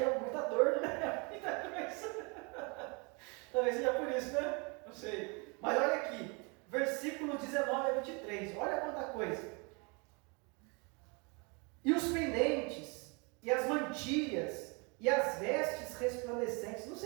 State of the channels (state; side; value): quieter; left; 31.5 dB